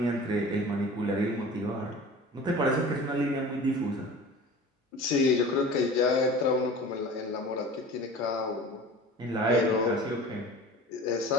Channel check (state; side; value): normal; both; correlation 0.39